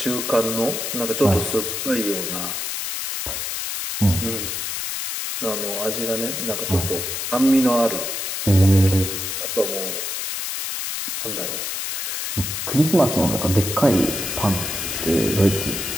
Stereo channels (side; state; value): left; noise; hiss, 3 dB below the sound